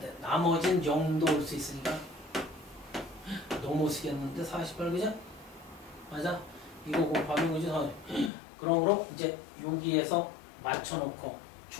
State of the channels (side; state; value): right; drops out; at 8.3 s